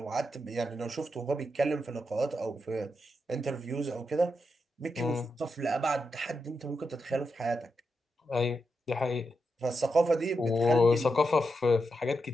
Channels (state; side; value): normal; both; correlation 0.86